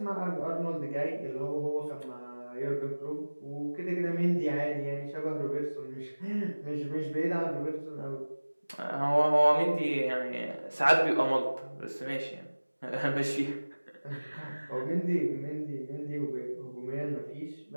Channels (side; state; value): both; inverted; correlation -1.00